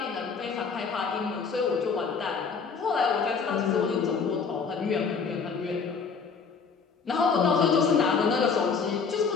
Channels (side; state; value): right; quieter; 5.5 dB